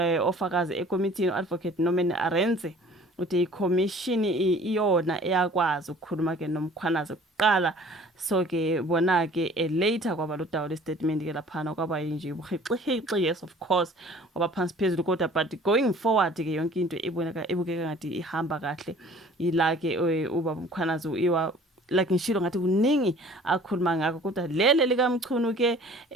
ofakazi ekomithini advocate Norman Arendse uthi iCommission iyona eyakwazi ukukhuluma ke noMkhwanazi kuqala. So ke bona ke later kwaba lo dawo le statement ke laphana kwaba nje ubuhixihixi, yes of course ngoba phansi phezulu kodwa but going forward ke yonke into ebukeka ngathi ihamba kahle ila ke ubaba uMkhwanazi iwa like ngishilo ngathi kuningi akhuluma ngakho kodwa lele likaMchunu ke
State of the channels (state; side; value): normal; both; correlation 0.50